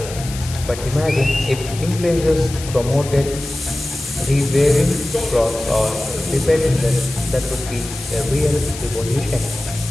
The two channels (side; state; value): left; noise; hiss, 12 dB below the sound